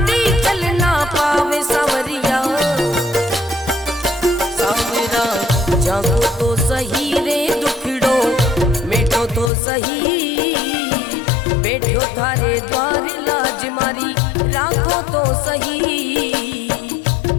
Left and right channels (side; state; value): right; drops out; at 9.5 s